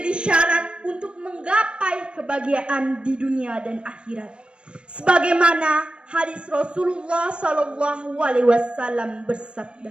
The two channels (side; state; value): left; late; 0.056 ms